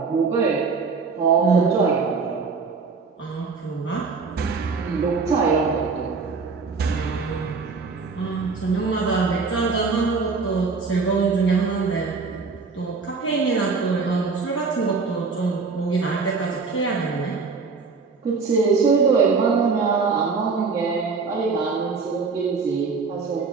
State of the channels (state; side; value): quieter; left; 4.7 dB